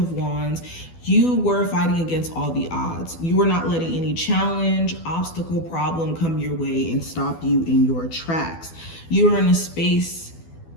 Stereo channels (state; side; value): late; right; 12 ms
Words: Wands, you were fighting against all the odds. You were not letting any challenge, obstacle, problem come your way and stop you in your tracks. You were in a space,